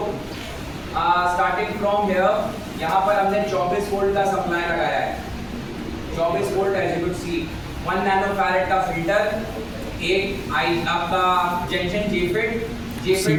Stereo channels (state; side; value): identical; both; correlation 1.00